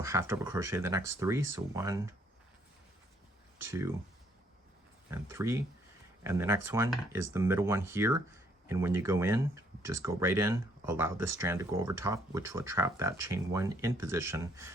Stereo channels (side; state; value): both; normal; correlation 0.67